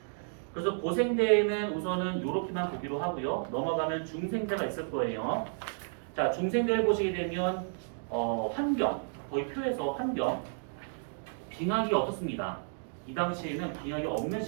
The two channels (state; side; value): silent; left; digital silence